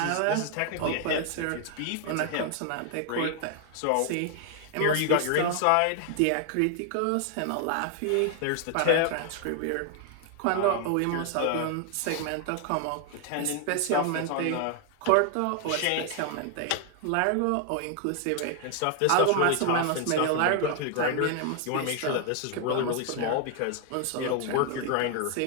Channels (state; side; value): different; both; correlation 0.00